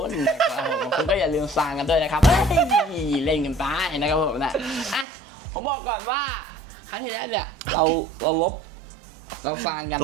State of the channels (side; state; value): left; drops out; at 5.1 s